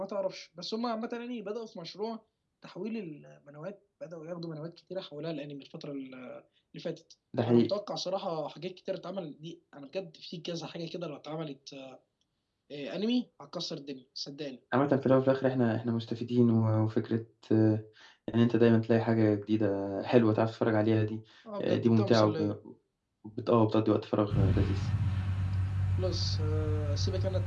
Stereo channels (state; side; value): identical; both; correlation 1.00